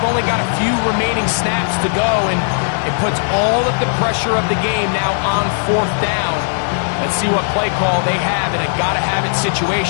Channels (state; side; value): silent; right; digital silence